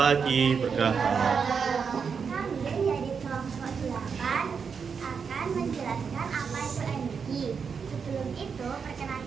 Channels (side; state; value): left; quieter; 6.1 dB